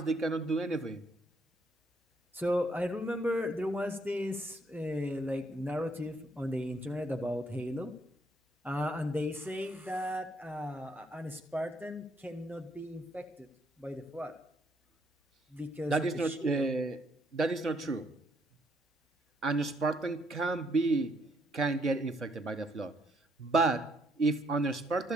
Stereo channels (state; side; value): normal; both; correlation 0.71